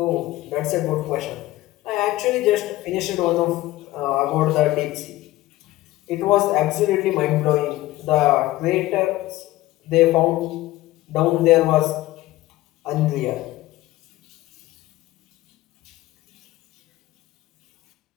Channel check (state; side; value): quieter; right; 17.0 dB